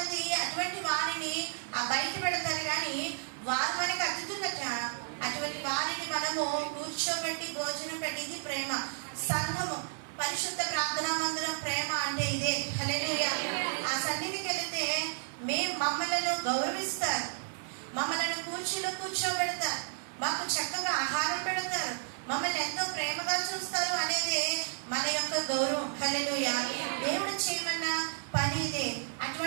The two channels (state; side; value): silent; left; digital silence